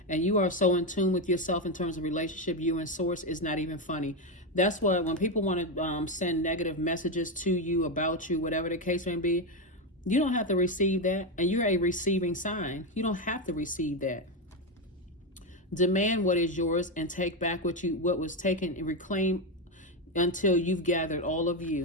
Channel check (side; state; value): both; normal; correlation 0.09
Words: And you are so in tune with yourself in terms of relationship, you and source, is not even funny. That's why when people want to send negative messages to you, about you, whatever the case may be, you don't have to receive that. And you're a receiving sign. You don't have to receive that. Demand what is yours and take back what was taken, and reclaim until you've gathered all of